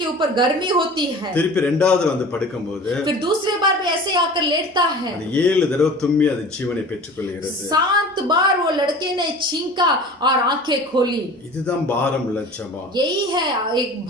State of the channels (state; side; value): normal; both; correlation 0.40